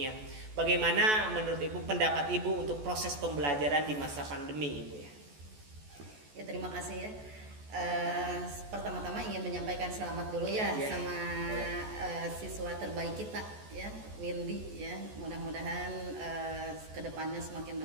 Bagaimana menurut Ibu, pendapat Ibu untuk proses pembelajaran di masa pandemi Ibu ya? Ya, terima kasih ya. Pertama-tama ingin menyampaikan selamat dulu ya, Ya. sama siswa terbaik kita ya, Windy ya. Mudah-mudahan kedepannya semakin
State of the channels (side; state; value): left; late; 14 ms